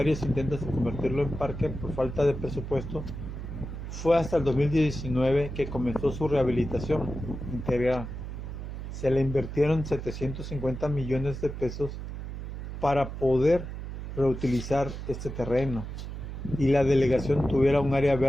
intentos de convertirlo en parque por falta de presupuesto, fue hasta el 2019 que comenzó su rehabilitación integral. Se le invirtieron 750 millones de pesos para poder reutilizar este terreno y la delegación tuviera un área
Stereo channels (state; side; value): noise; right; hum, 8 dB below the sound